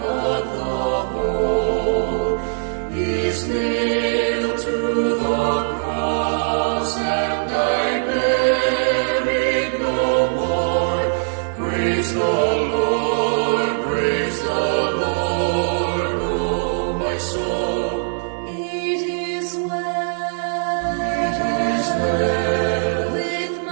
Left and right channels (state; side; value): silent; left; digital silence